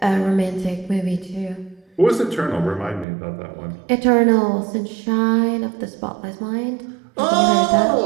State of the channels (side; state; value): left; drops out; at 3.1 s